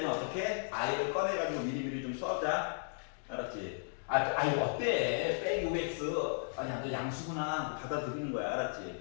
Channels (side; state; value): right; silent; digital silence